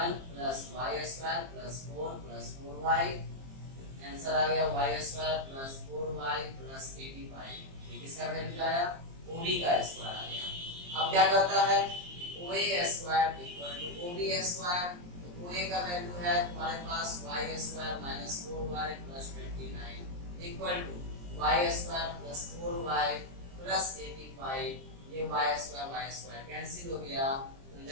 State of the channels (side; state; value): left; late; 23 ms